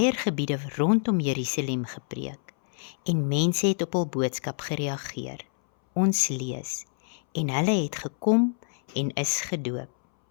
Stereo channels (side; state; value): right; silent; 60 dB below the other